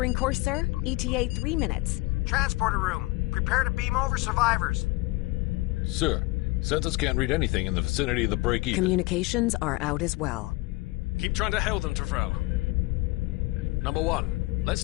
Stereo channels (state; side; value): quieter; right; 22.1 dB